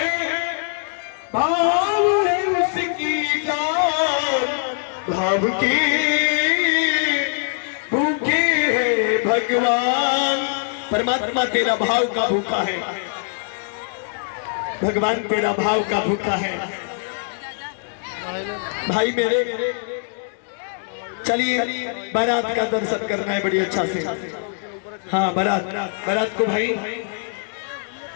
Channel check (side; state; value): right; silent; digital silence